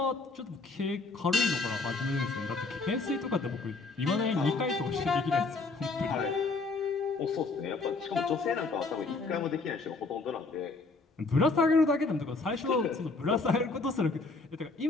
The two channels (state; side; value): quieter; right; 3.8 dB